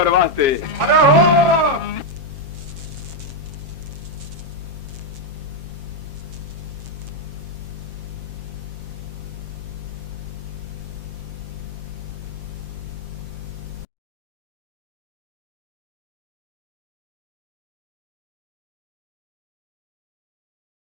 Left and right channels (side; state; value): left; late; 7.4 ms